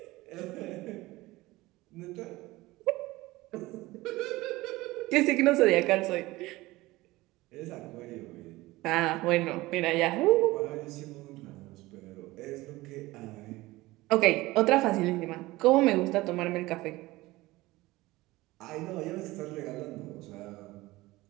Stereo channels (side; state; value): left; quieter; 19.5 dB